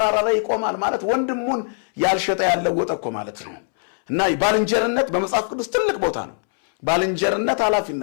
ላይ ይቆማል ማለት ወንድሙን ያልሸጠ ያለወጠ እኮ ማለት ነው። እና ባልንጀርነት በመጽሐፍ ቅዱስ ትልቅ ቦታ ነው። ባልንጀርነት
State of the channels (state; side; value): silent; right; 65 dB below the other